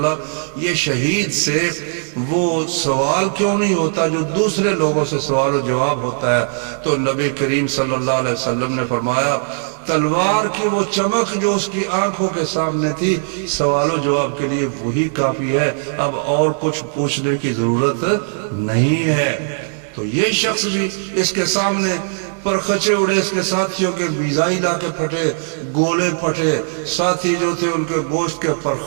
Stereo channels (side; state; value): left; silent; 67 dB below the other